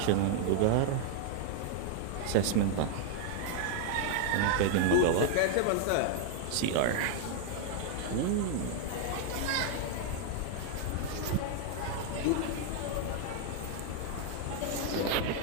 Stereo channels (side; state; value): both; different; correlation 0.00